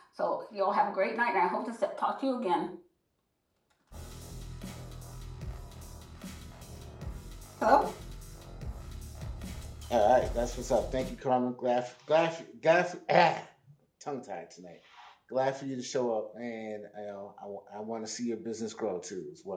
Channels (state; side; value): identical; both; correlation 1.00